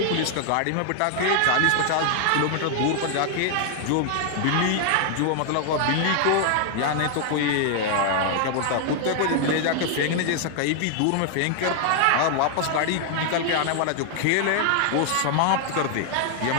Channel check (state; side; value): different; both; correlation 0.00